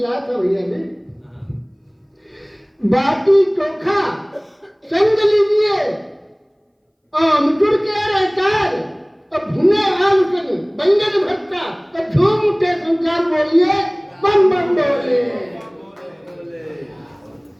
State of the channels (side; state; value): both; identical; correlation 1.00